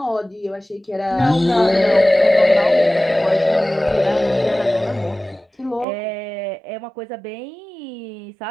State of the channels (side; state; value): left; drops out; at 5.9 s